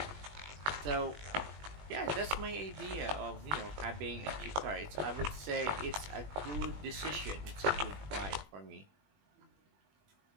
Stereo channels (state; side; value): late; left; 20 ms